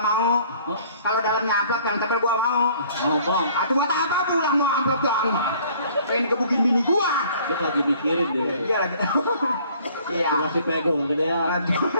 mau. Hah? Kalau dalamnya amplop yang tebel gua mau. Oh, bang. Atuh buat apa pulang mau amplop doang mah? Pengen kebukin bini gua. Dia lagi mikirin deh. Iya lagi. Iya. Kasih pegong gede ya.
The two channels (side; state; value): both; inverted; correlation -0.56